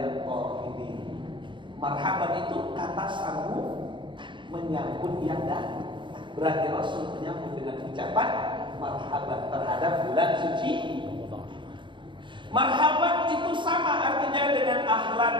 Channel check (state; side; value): late; left; 0.23 ms